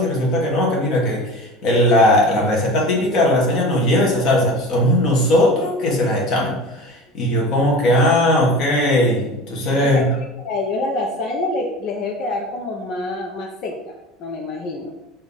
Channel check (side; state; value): both; normal; correlation 0.35